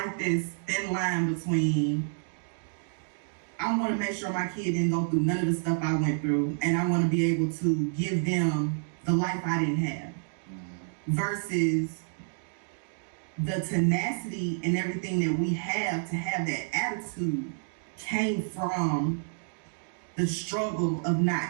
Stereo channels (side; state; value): left; silent; digital silence